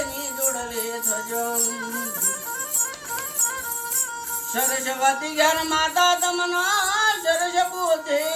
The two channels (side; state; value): both; identical; correlation 1.00